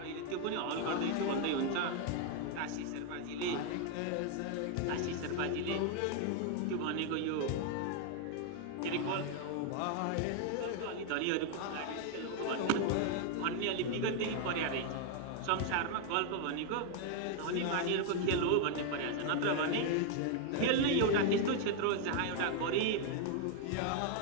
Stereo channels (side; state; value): both; different; correlation 0.00